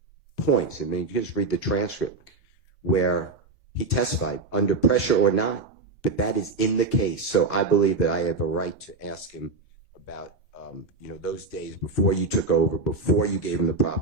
points. I mean, you just read the transcript where he testified under pressure or not, but that is in the case. So I believe that I have a right to ask him about, those days before you took over, before you gave him the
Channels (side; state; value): left; quieter; 3.7 dB